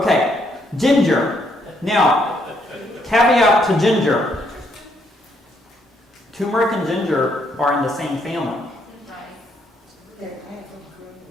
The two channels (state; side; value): normal; both; correlation 0.72